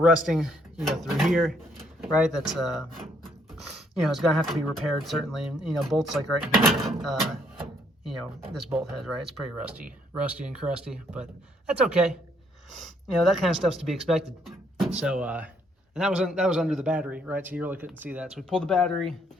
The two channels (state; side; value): normal; both; correlation 0.69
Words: through here, right? That's it's gonna have to be repaired certainly, and bolts like right here, this bolt head, right? It's pretty rusty and crusty, but that's okay. That kind of stuff's to be expected. So, and that was under the battery, right? So you really couldn't see that. So we pulled the battery,